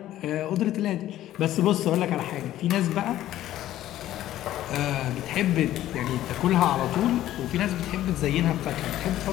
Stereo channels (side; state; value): right; quieter; 13.5 dB